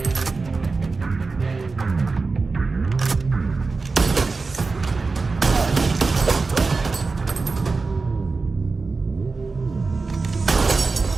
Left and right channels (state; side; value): quieter; left; 4.1 dB